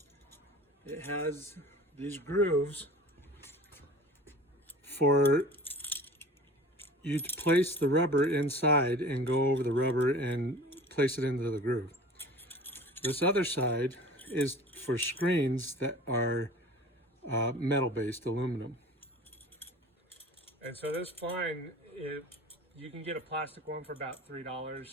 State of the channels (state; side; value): normal; both; correlation 0.42